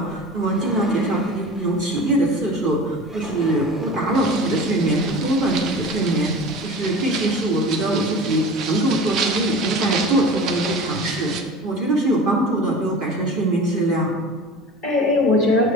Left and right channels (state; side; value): normal; both; correlation 0.37